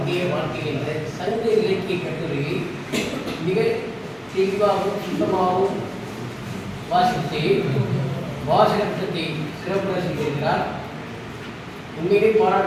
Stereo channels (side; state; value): both; identical; correlation 1.00